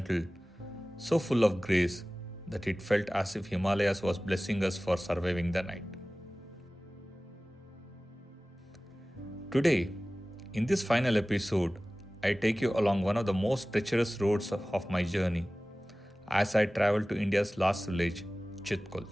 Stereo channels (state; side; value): normal; both; correlation 0.97